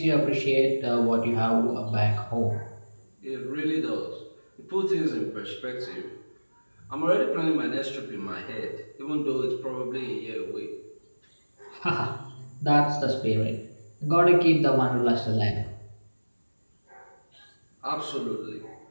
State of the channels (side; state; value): both; inverted; correlation -1.00